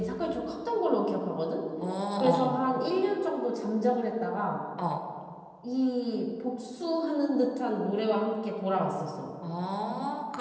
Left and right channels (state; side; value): identical; both; correlation 1.00